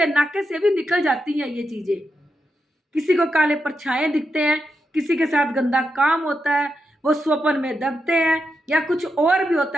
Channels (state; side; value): normal; both; correlation 0.86